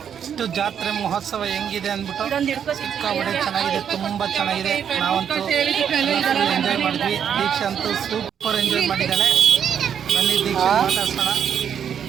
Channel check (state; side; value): quieter; left; 8.3 dB